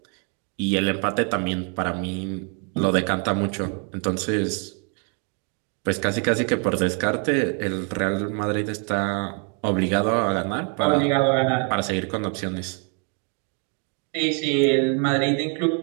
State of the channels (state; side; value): quieter; left; 39.4 dB